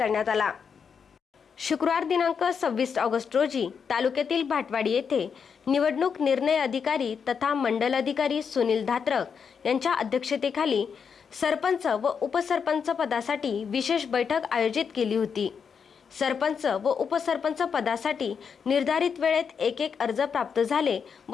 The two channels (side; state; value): right; quieter; 6.5 dB